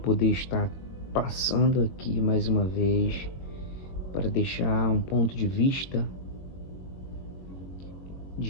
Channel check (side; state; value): right; late; 22 ms